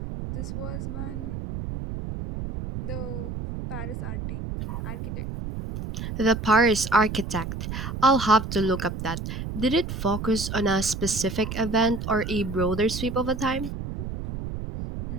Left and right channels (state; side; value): noise; right; rumble, 6 dB below the sound